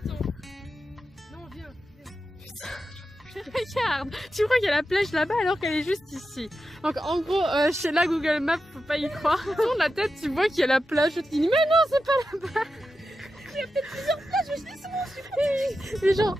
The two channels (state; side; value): normal; both; correlation 0.90